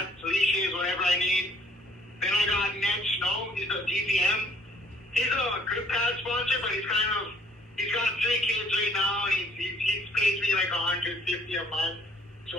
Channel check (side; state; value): both; normal; correlation 0.60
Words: leashes, whatever I need. Then I got Ned Snow. He's a DVM. He's a grip pad sponsor, but he's got 3 kids right now, and he pays me like $150 a month. So